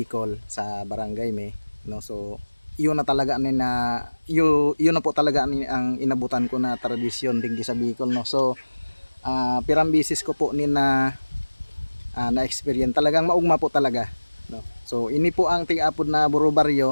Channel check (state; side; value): inverted; both; correlation -1.00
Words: sa Barangay Me, no. So yun na talaga yun na po talaga ang inabutan ko na tradisyon digdi sa Bicol, no. So pirang bisis ko po na experience, talagang maugma po talaga, no. So ini po ang tig-apod na Buro